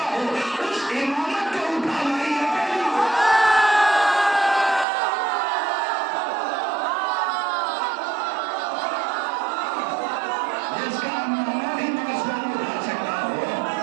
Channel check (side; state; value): left; drops out; at 4.9 s